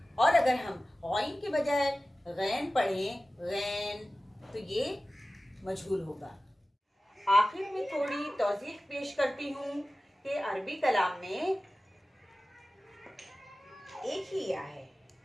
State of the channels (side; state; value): both; normal; correlation 0.96